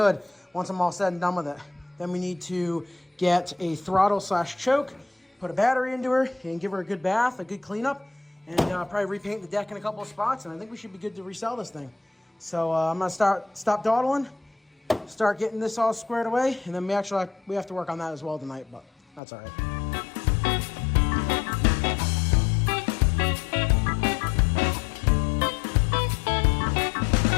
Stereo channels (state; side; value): drops out; right; at 19.2 s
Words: once I'm all said and done with it. Then we need to get a throttle/choke, put a battery into her, and give her a good bath, a good cleanup, and probably repaint the deck in a couple of spots, and I think we should be good to resell this thing. So I'm gonna stop dawdling, start getting this all squared away, and then we have to work on that as well tonight, but that's all right.